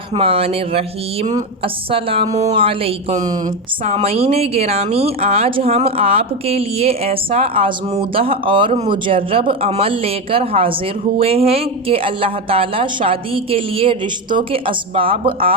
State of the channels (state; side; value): normal; both; correlation 0.14